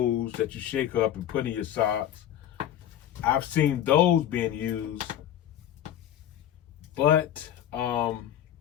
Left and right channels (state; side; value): quieter; right; 11.1 dB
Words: that you shake up and put in your socks. I've seen those being used, but I